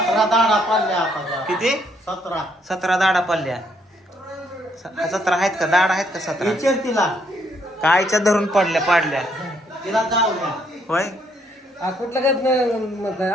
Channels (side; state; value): both; normal; correlation 0.71